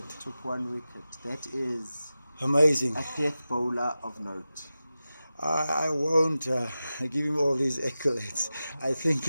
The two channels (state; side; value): inverted; both; correlation -0.94